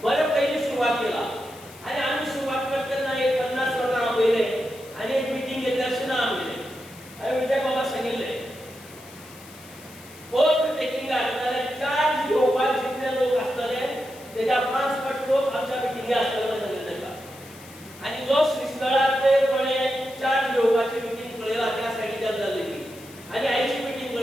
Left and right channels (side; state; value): left; noise; hiss, 20 dB below the sound